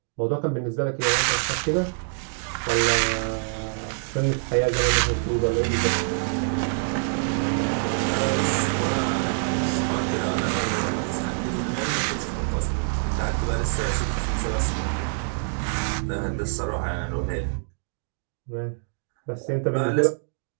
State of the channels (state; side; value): silent; left; digital silence